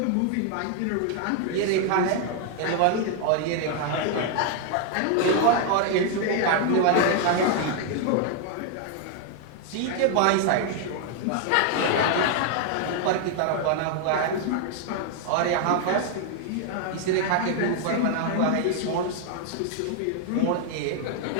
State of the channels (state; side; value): different; both; correlation 0.00